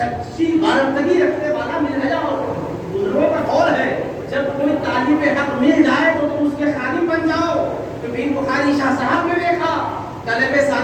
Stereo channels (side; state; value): both; identical; correlation 1.00